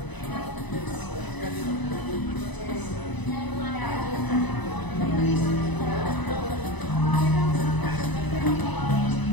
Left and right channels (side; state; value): right; late; 1.0 ms